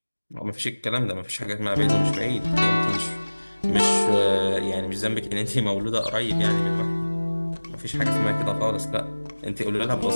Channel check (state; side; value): inverted; both; correlation -1.00